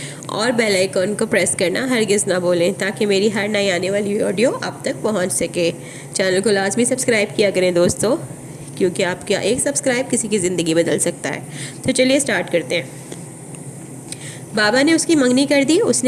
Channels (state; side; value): identical; both; correlation 1.00